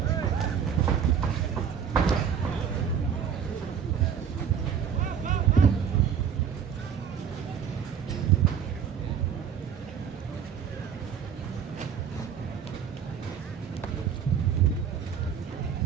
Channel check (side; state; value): left; quieter; 7.7 dB